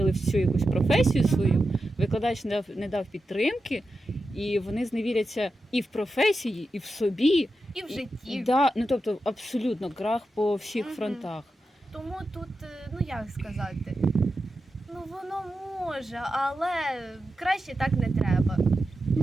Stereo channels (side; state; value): both; normal; correlation 0.90